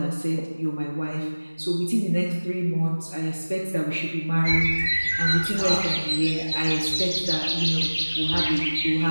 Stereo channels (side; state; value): both; inverted; correlation -1.00